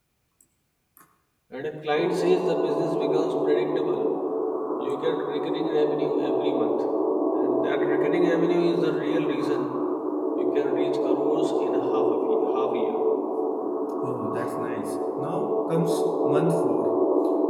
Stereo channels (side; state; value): both; identical; correlation 1.00